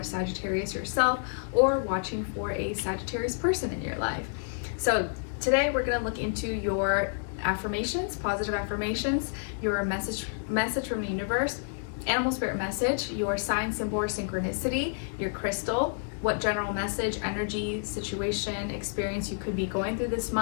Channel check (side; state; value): right; silent; digital silence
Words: Sagittarius yourself or watching for a Sagittarius person in your life. So today we're going to look into your affirmations, positive affirmations, your message from the universe, animal spirit message, your sign, symbol, or synchronicity, your crystal, what general message, energy, situation, experience you could be going through this